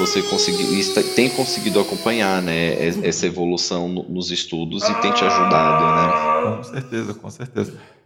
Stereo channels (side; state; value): both; identical; correlation 1.00